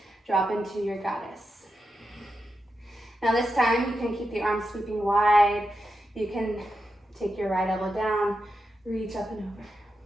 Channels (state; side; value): normal; both; correlation 0.88